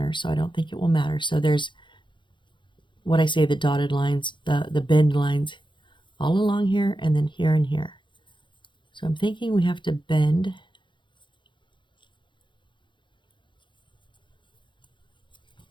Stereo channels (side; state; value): right; late; 0.23 ms